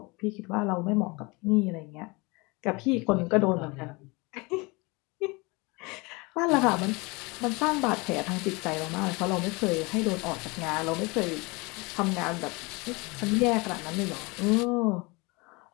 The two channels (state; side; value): quieter; right; 26.5 dB